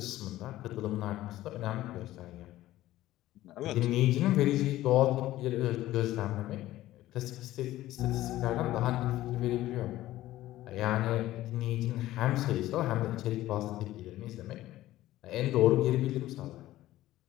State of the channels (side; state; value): right; quieter; 15.2 dB